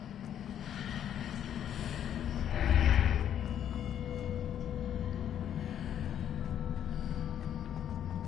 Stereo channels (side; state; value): right; quieter; 9.9 dB